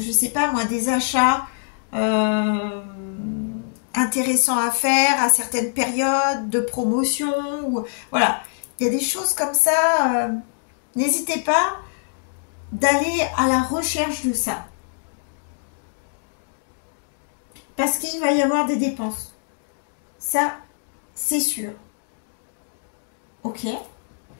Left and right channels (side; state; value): right; silent; digital silence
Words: sais pas moi, des achats intéressants à faire à certaines périodes de promotion. Ou, voilà, il y a des choses comme ça. N'hésitez pas d'aller à la recherche de ça. Parce qu'il va y avoir des dépenses. Ça, c'est sûr. Ok.